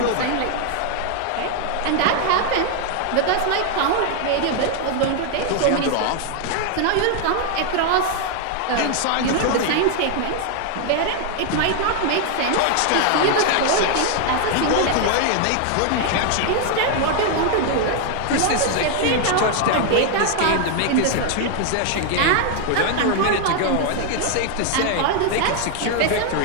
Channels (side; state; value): both; different; correlation 0.00